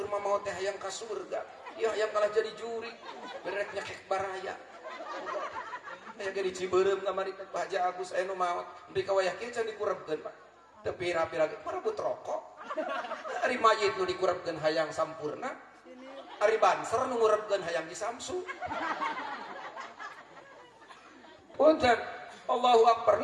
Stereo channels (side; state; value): both; identical; correlation 1.00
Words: mah maot teh hayang ka surga. Ya yang kalah jadi juri, berek nyekek baraya. Aya ge di Ciberem kamari Pak Haji Agus aya nu maot, nepi ka wayah kieu can dikurebkeun Pak. Teu pira-pira parebut rokok. Ari mayit nu dikurebkeun hayang sampurna. Ari banser nu ngurebkeun hayang disamsu. Punten, Allahu Akbar.